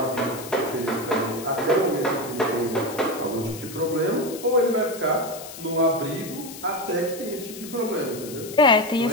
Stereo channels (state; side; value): noise; left; hiss, 13 dB below the sound